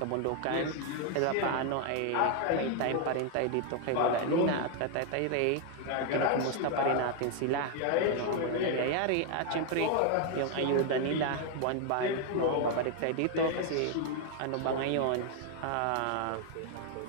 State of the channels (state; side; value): different; both; correlation 0.00